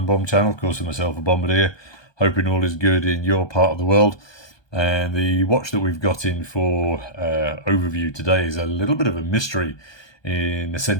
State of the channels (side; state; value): right; late; 1.2 ms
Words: Bomb channel. Of course, with myself, a Bombardier. Hoping all is good in your part of the world. And the watch that we've got in for overview today is a little bit of a mystery in the